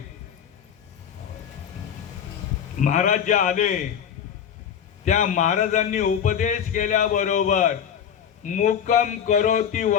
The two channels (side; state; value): right; quieter; 8.5 dB